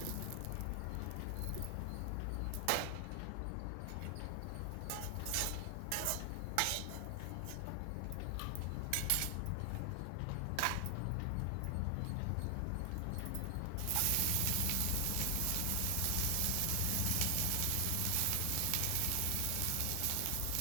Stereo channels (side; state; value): both; different; correlation 0.00